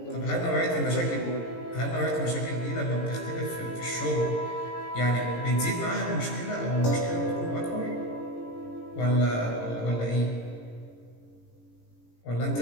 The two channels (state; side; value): late; right; 17 ms